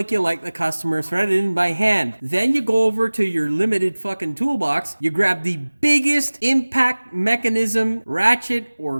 you like the customer, thread it in by hand. Then you go over to your limited fucking toolbox, you grab the biggest impact mechanism, ratchet, or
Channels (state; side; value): inverted; both; correlation -1.00